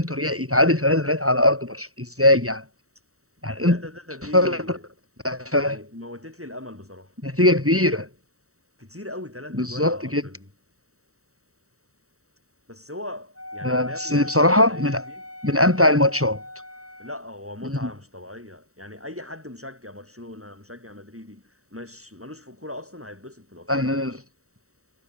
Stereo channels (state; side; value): late; left; 0.64 ms